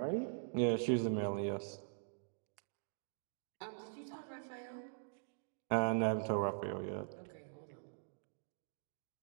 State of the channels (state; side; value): silent; left; digital silence